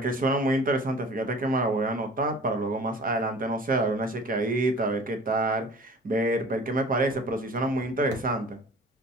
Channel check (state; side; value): normal; both; correlation 0.45